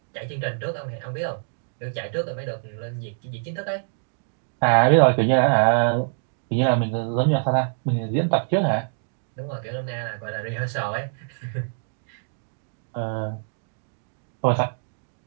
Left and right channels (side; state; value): left; silent; digital silence